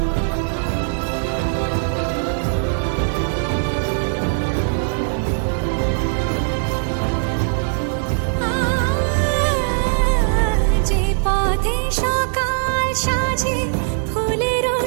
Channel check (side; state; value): left; silent; digital silence